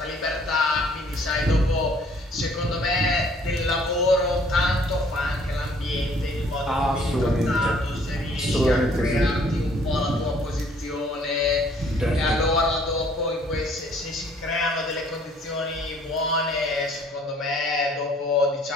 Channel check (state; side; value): normal; both; correlation 0.59